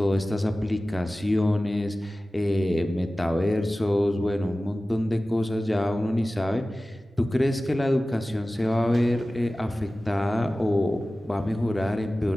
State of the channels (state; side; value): normal; both; correlation 0.96